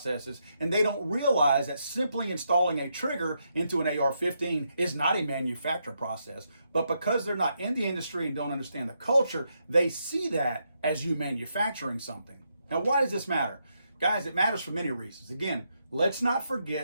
and they don't realize that simply installing a trigger into an AR-15 is not a manufacture process. But because they're not in the industry and don't understand the culture, they see that as you manufacturing something. Now, why does this matter? Guys, it matters for many reasons. Again, let's not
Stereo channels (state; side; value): inverted; both; correlation -0.80